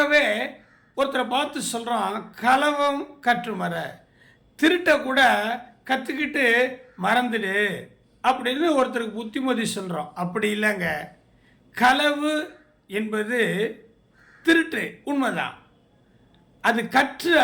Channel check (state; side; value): identical; both; correlation 1.00